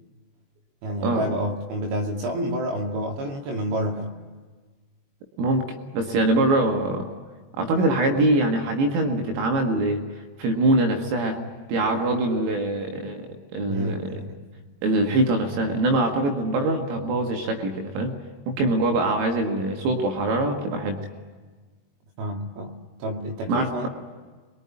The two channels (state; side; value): late; left; 21 ms